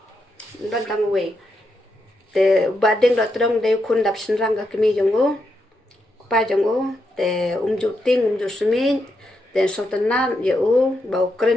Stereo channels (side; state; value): both; normal; correlation 0.82